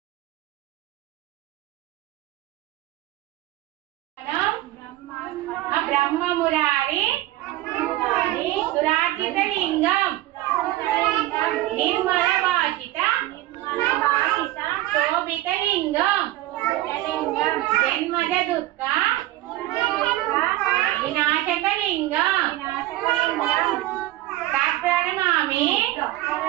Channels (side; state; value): left; quieter; 16.2 dB